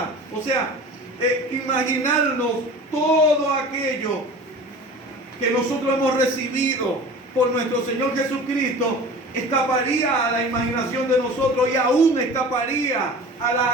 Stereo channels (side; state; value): both; normal; correlation 0.39